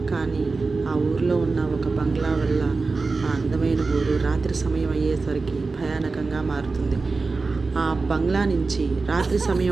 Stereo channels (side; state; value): left; quieter; 4.0 dB